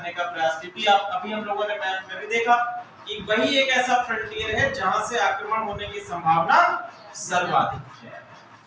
का प्रयास। क्योंकि आप अभी हम लोगों ने मैप में भी देखा कि वही एक ऐसा फ्रंटियर है जहां से आक्रमण होने की संभावना सर्वाधिक है।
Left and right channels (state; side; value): identical; both; correlation 1.00